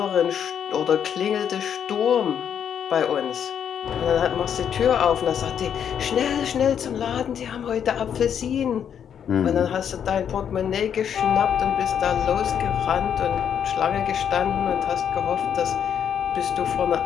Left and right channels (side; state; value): right; quieter; 8.4 dB